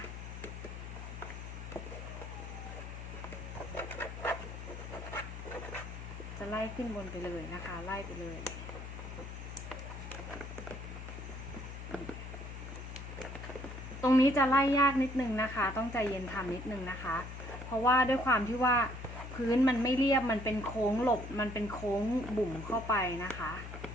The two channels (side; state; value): left; noise; hum, 9 dB below the sound